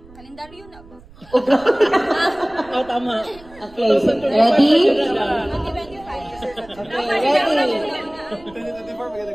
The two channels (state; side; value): noise; right; rumble, 23 dB below the sound